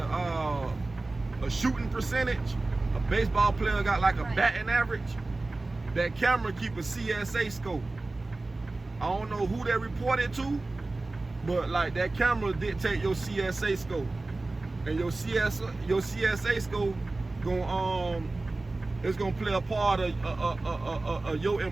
shooting percentage, a baseball player got like a batting average. That camera keep a CSA score. I don't know who they reported to, but like that camera dictate your CSA score, and your CSA score it's gonna play a part of your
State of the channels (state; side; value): quieter; left; 3.2 dB